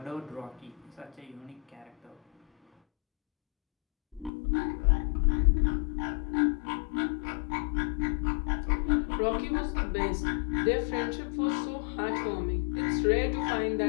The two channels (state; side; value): drops out; right; at 4.3 s